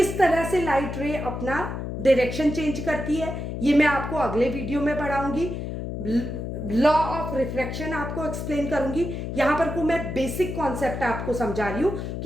तरह से लाइट रे अपना डायरेक्शन चेंज करती है ये मैं आपको अगले वीडियो में पढ़ाऊंगी। लॉ ऑफ रिफ्रैक्शन आपको एक्सप्लेन करूंगी। यहां पर को मैं बेसिक कॉन्सेप्ट आपको समझा रही हूं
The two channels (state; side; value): noise; left; hum, 5 dB below the sound